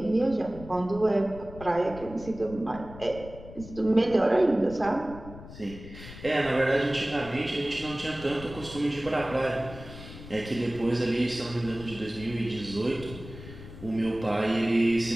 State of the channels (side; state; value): left; noise; rumble, 15 dB below the sound